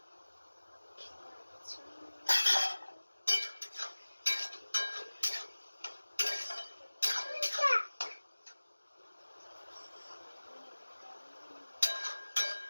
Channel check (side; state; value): both; inverted; correlation -1.00